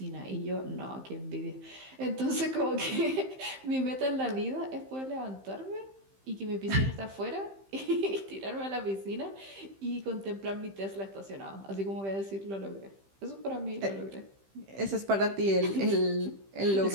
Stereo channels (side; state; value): left; late; 15 ms